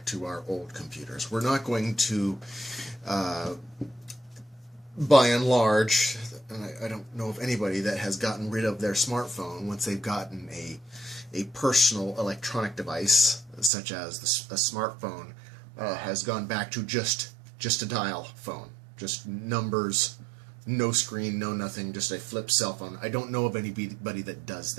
to our old computers. We're not going to, by and large, and I don't know of anybody that has gotten rid of their smartphone once they've gotten a personal electronic device, such as a smartphone, has gone back to just a dial phone, just numbers, no screen, no nothing, just a flip cell phone. I don't know of anybody that does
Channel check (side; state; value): left; drops out; at 13.7 s